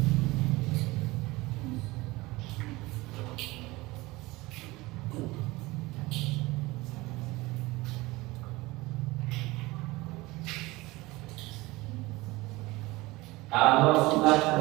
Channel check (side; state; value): left; quieter; 21.1 dB